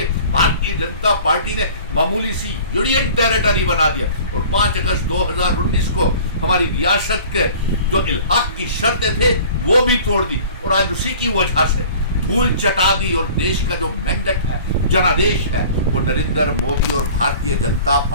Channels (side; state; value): both; inverted; correlation -0.46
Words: भारतीय जनता पार्टी ने मामूली सी यूनियन टेरिटरी बना दिया और 5 अगस्त 2019 को हमारी रियासत के जो इल्हाक की शर्तें थे वो भी तोड़ दी और आज उसी की वजह से धूल चटा दी और देश का जो मैंडेट है, जनादेश है, वो नरेंद्र मोदी और भारतीय जनता